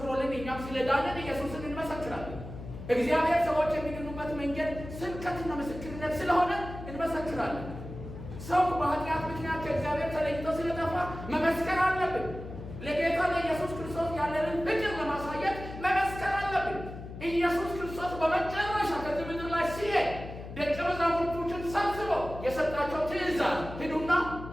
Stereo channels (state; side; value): noise; left; hum, 11 dB below the sound